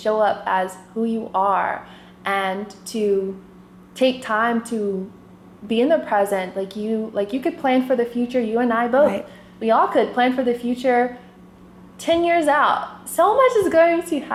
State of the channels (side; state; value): both; identical; correlation 1.00